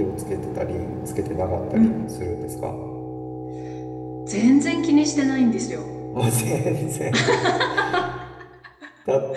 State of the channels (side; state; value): both; identical; correlation 1.00